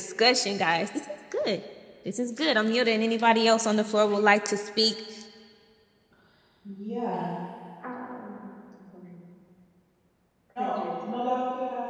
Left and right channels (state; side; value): identical; both; correlation 1.00